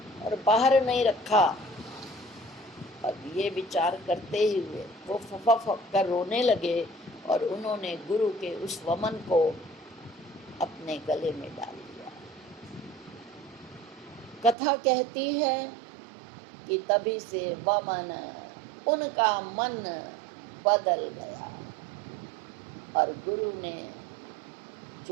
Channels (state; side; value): drops out; left; at 14.6 s